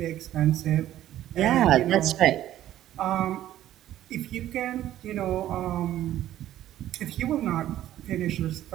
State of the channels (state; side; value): quieter; left; 12.9 dB